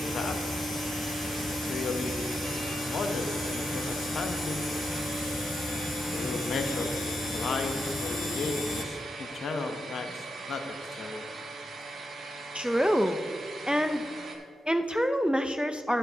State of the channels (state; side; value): normal; both; correlation 0.87